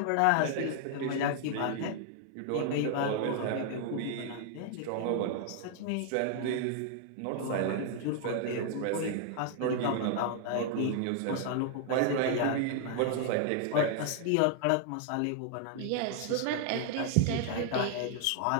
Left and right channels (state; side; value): different; both; correlation 0.00